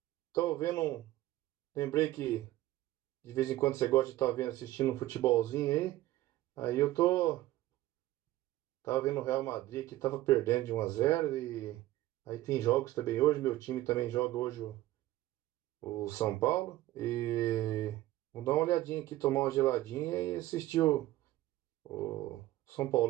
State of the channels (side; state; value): left; quieter; 15.9 dB